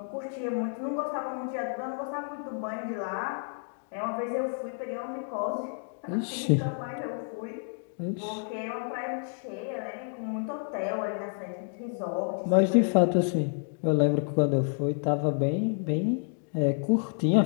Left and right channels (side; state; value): right; silent; 57 dB below the other